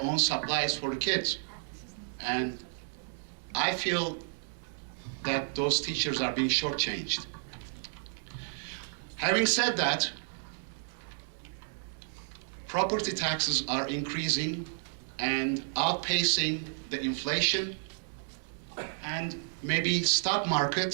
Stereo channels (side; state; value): left; silent; 57 dB below the other